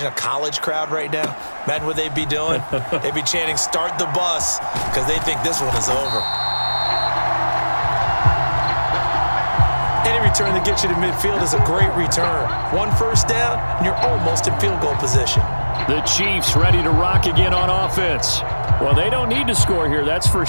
a college crowd right now? Imagine what they'd be doing. They'd be chanting, "Start the bus," because they think this one is over. Any return that gets you to midfield is a great return. 1 first down, and you're almost in field goal position. The Chiefs ready to rock again on offense. Well, they don't need to score here, that's for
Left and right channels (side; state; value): both; inverted; correlation -1.00